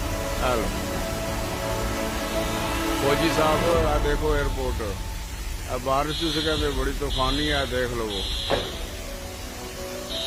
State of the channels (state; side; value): identical; both; correlation 1.00